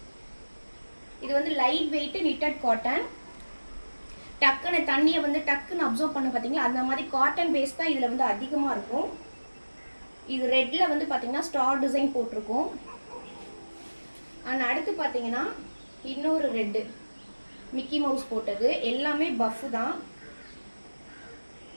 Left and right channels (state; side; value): inverted; both; correlation -1.00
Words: இது வந்து லைட் வெயிட் நிட்டட் காட்டன். டக்குன்னு தண்ணியை வந்து டக்குன்னு அப்சர்வ் பண்ண பார்த்தீங்களா, அந்த மாதிரி காட்டன் பேஸ் தான் இதில் வந்து அதிகமாக இருக்கும். இது ரெட்டில் வந்து பார்த்தீங்கன்னா ஸ்டார் டிசைன் போட்டிருக்கும். அண்ட் அடுத்து பார்த்தீங்கன்னா இன்னொரு ரெட்டு மிக்கி மவுஸ் போட்டது. எல்லாமே பஃப் தான்.